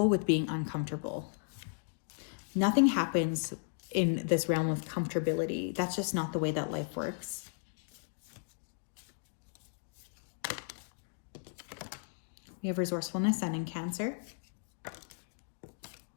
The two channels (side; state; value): right; silent; digital silence